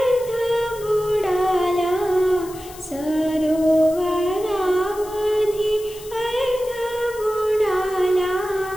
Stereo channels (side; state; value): left; noise; hiss, 18 dB below the sound